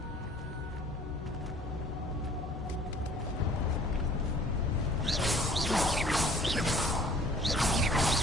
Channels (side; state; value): both; normal; correlation 0.53